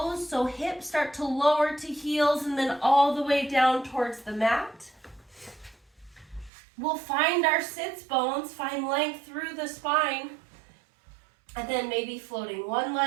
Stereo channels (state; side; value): drops out; left; at 6.5 s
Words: so hips start to lower to heels and then all the way down towards the mat. We'll find our sits bones, find length through the spine, and then maybe floating one